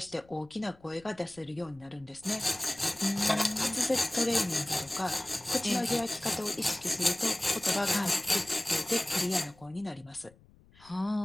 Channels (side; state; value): left; noise; rumble, 26 dB below the sound